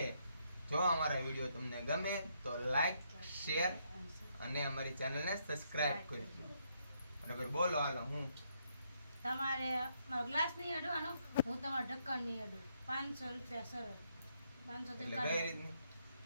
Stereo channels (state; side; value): inverted; both; correlation -0.75